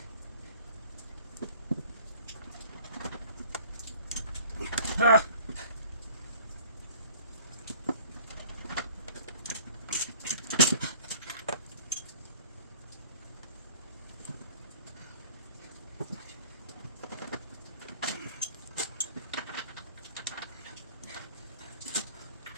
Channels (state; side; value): inverted; both; correlation -0.50